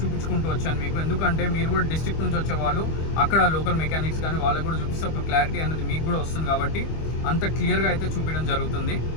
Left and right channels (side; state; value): right; late; 25 ms